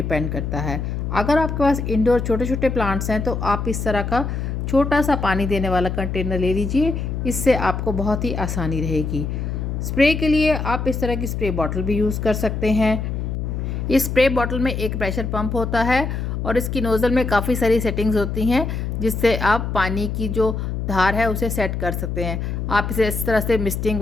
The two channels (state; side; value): noise; left; hum, 3 dB below the sound